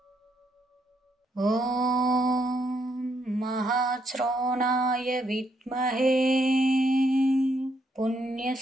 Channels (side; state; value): both; normal; correlation 0.75